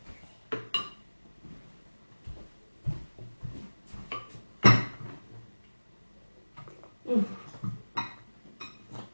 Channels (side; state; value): both; inverted; correlation -1.00